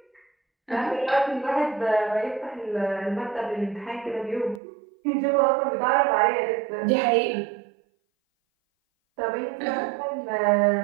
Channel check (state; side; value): drops out; left; at 4.6 s